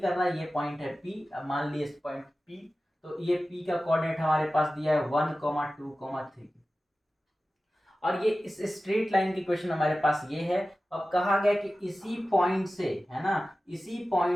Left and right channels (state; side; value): normal; both; correlation 0.95